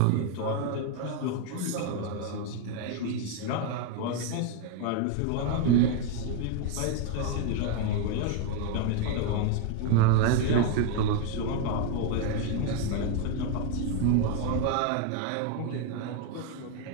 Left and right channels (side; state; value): both; different; correlation 0.01